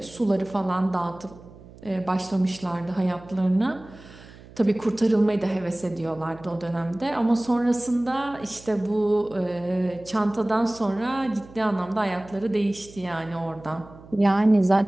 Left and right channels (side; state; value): right; noise; hum, 20 dB below the sound